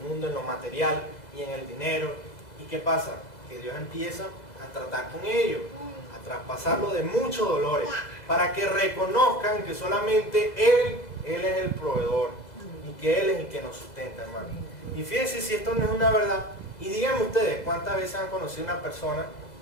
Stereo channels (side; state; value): right; late; 2.0 ms